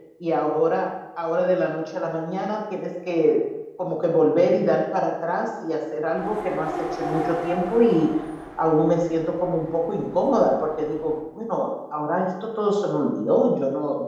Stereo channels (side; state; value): both; identical; correlation 1.00